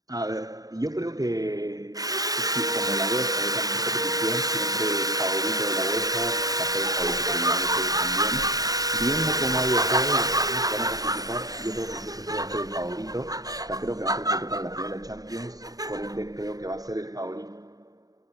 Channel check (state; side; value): late; left; 0.18 ms